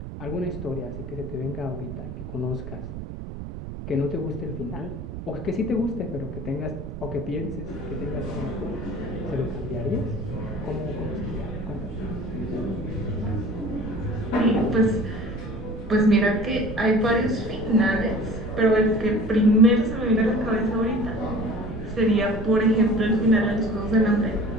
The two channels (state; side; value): noise; right; rumble, 9 dB below the sound